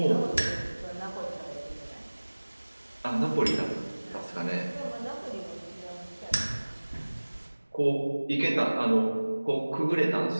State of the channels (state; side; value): inverted; both; correlation -1.00